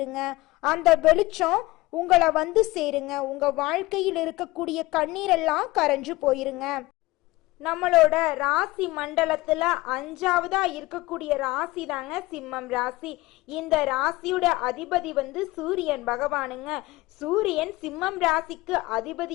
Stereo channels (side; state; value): right; quieter; 19.9 dB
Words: அந்த வெளிச்சம் உங்களை வந்து சேருங்க. உங்க வாழ்க்கையில் இருக்கக்கூடிய கண்ணீரெல்லாம் கரைஞ்சு போயிருங்க. நம்மளோட ராசி மண்டலத்துல 5வதா இருக்கக்கூடிய ராசி தாங்க சிம்மம் ராசி. இந்த ராசியோட அதிபதி வந்து சூரியன் பகவானுங்க. சூரியன் சிம்மம் ராசிக்கு